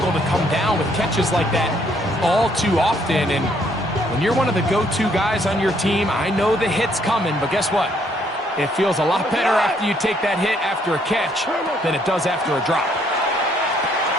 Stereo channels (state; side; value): normal; both; correlation 0.68